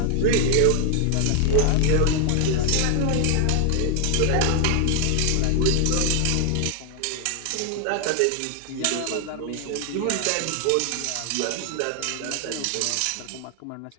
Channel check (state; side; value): different; both; correlation 0.00